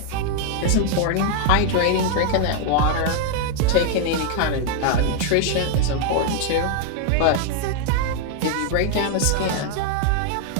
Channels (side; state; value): both; different; correlation 0.00